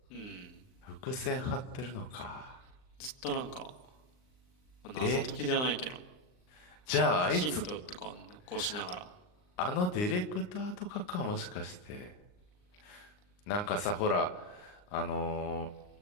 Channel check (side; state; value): right; late; 39 ms